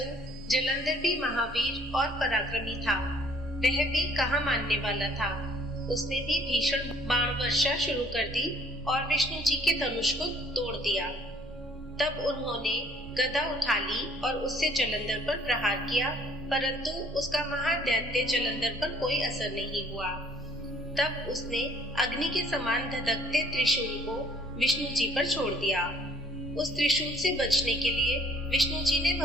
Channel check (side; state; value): right; noise; rumble, 21 dB below the sound